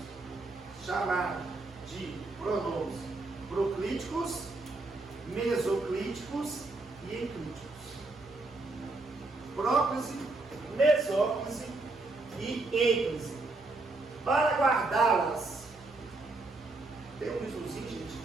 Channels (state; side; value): quieter; left; 3.3 dB